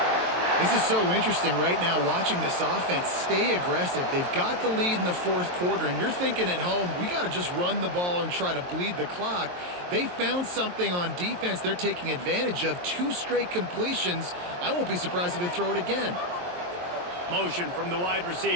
This is so interesting right now, watching this offense stay aggressive. They've got the lead in the 4th quarter, and you're thinking at home, we got to just run the ball and try to bleed the clock. They found something on defense they're taking advantage of. 2 straight completions. I won't be surprised if they throw it again. Motion from the wide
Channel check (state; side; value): late; left; 23 ms